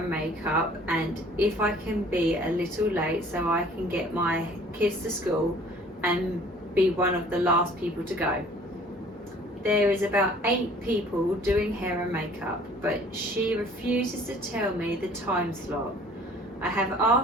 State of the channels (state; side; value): normal; both; correlation 0.53